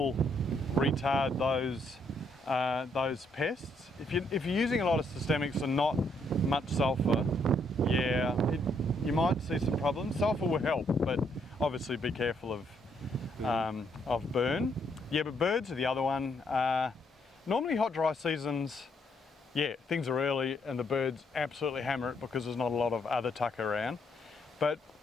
retard those pests. If you're using a lot of systemics and not much sulphur, you might see some problems. Sulphur will help, but obviously be careful of burn. Yeah, but birds are the other one. Normally hot, dry seasons, things are early and the birds absolutely hammer it because there's not a lot of other tuck around. But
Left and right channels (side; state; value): both; normal; correlation 0.72